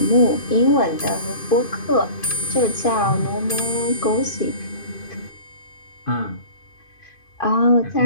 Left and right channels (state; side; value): late; right; 2.5 ms